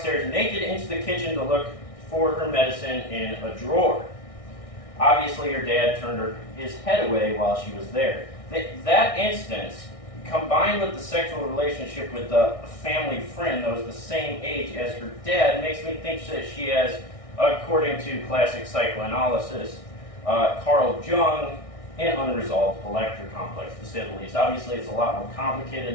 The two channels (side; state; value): right; late; 1.6 ms